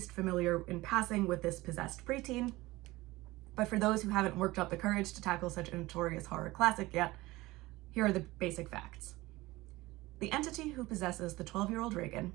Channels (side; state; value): left; quieter; 19.6 dB